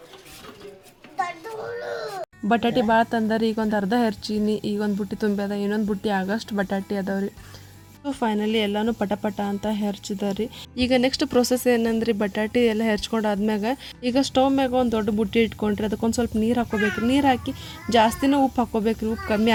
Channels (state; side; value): identical; both; correlation 1.00